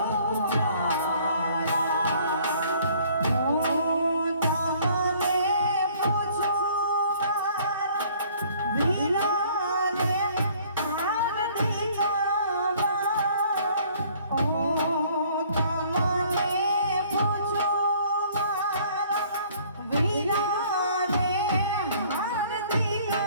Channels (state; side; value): inverted; both; correlation -0.57